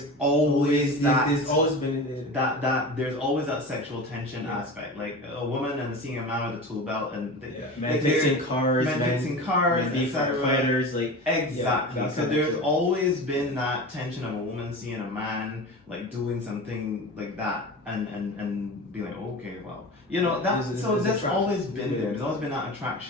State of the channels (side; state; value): both; normal; correlation 0.31